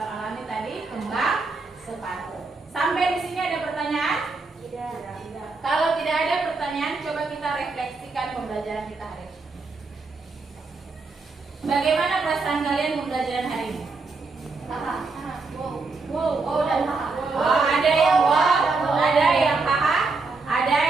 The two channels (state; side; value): quieter; left; 3.9 dB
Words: alami tadi kembang sepatu. Sampai di sini ada pertanyaan? Tidak. Kalau tidak ada pertanyaan, coba kita refleksikan pembelajaran kita hari ini. Bagaimana perasaan kalian pembelajaran hari ini? Wow dan haha. Oh, ada yang wow, ada yang haha, ada